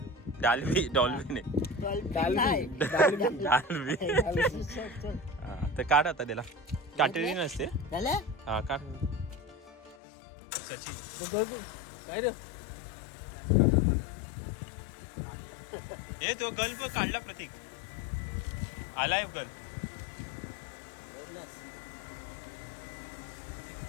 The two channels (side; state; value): right; drops out; at 10.0 s